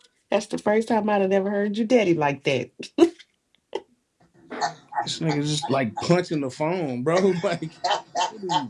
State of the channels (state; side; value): identical; both; correlation 1.00